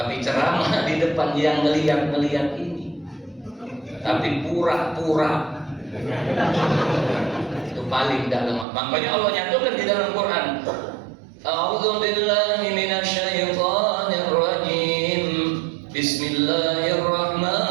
ceramah di depan yang ngeliat ini, tapi pura-pura. Itu paling dalam. Makanya Allah nyatakan di dalam Quran, A'udzu billahi minasyaitonir rajim.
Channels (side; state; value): left; drops out; at 8.7 s